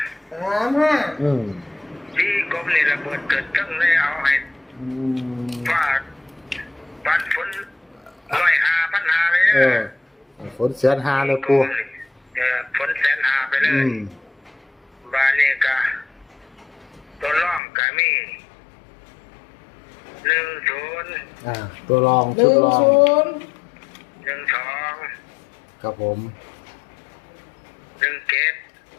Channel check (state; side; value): drops out; right; at 17.6 s